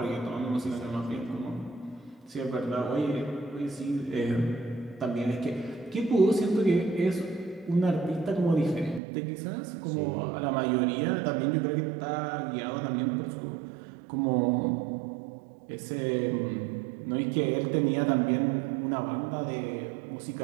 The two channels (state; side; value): drops out; left; at 9.0 s